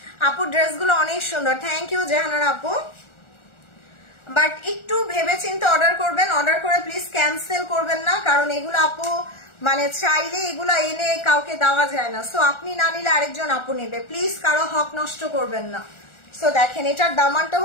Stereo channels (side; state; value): right; late; 1.4 ms